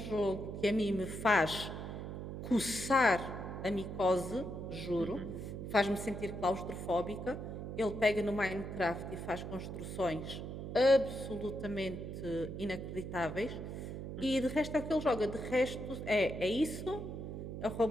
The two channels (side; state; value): right; noise; hum, 7 dB below the sound